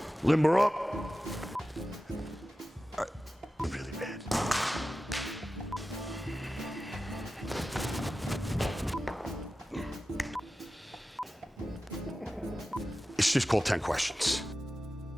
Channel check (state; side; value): normal; both; correlation 0.94